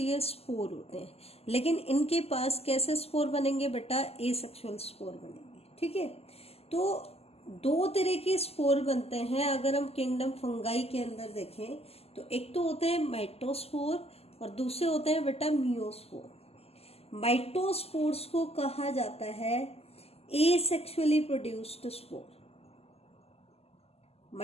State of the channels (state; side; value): late; right; 0.29 ms